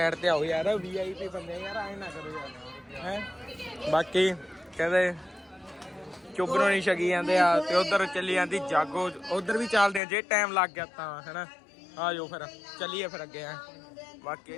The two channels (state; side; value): drops out; right; at 10.0 s